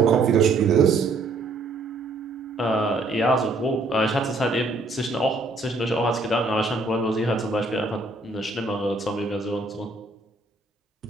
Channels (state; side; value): quieter; left; 3.2 dB